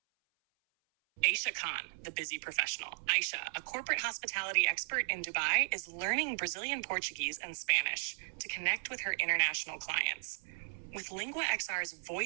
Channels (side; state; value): left; silent; 54 dB below the other